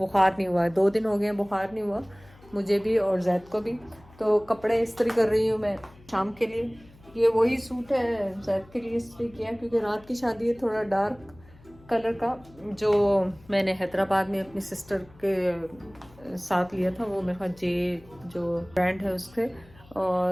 नहीं हुआ है, 2 दिन हो गए हैं बुखार नहीं हुआ मुझे भी और जैद को भी। तो कपड़े इस्त्री कर रही हूँ मैं शाम के लिए। ये वही सूट है जैद के लिए इस्त्री किया क्योंकि रात की शादी है, थोड़ा डार्क कलर का, जो मैंने हैदराबाद में अपनी सिस्टर के साथ लिया था। वो मेरे पास जे जो ब्रांड है उससे,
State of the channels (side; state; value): left; noise; hum, 25 dB below the sound